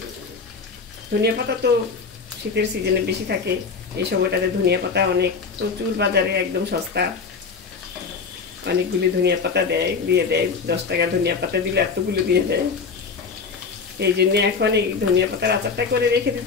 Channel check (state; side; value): quieter; right; 5.1 dB